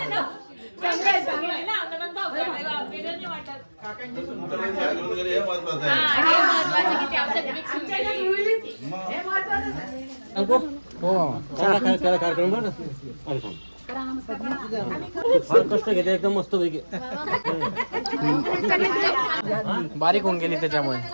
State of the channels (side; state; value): both; inverted; correlation -1.00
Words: कार्यक्रम फार कष्ट घेते एकदम मस्त पैकी बारीक होऊन गेली त्याच्यामुळे.